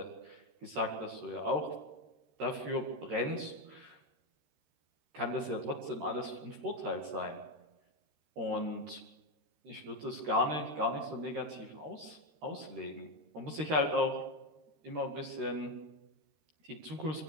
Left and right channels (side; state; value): left; late; 13 ms